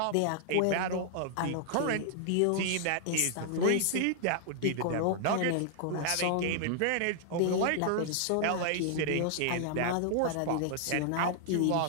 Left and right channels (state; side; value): different; both; correlation 0.00